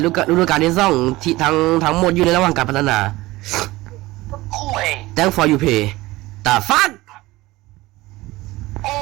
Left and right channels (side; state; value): left; quieter; 19.2 dB